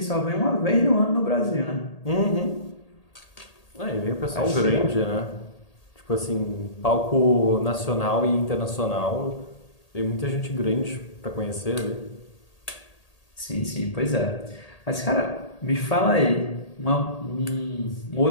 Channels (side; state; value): right; late; 1.8 ms